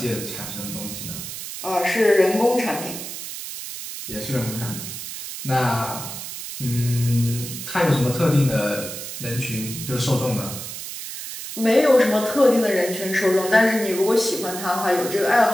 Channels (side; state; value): right; noise; hiss, 9 dB below the sound